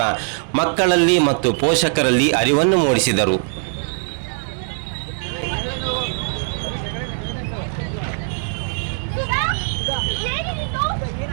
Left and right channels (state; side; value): silent; left; digital silence